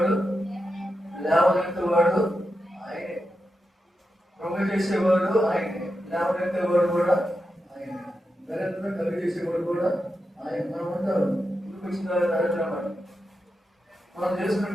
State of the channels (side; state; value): both; normal; correlation 0.88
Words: లేవనెత్తేవాడు ఆయనే. కృంగ చేసేవాడు ఆయనే, లేవనెత్తేవాడు కూడా ఆయనే, దరిద్రం కలుగు చేసేవాడు కూడా ఆయన. మనం ఉంటారు ఇంటికి వచ్చిన దరిద్రం అని మనం చేసుకునే